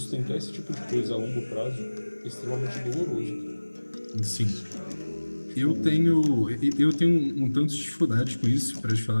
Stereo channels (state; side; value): inverted; both; correlation -1.00